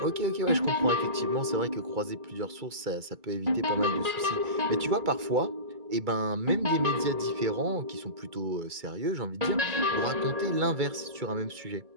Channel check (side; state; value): left; late; 2.3 ms